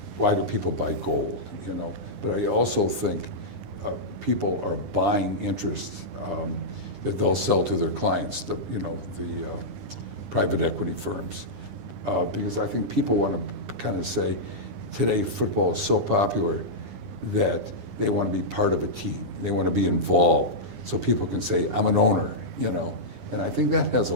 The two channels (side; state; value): left; late; 9.9 ms